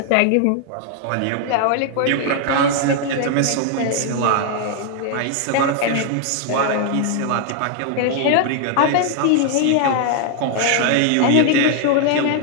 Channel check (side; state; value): both; different; correlation 0.00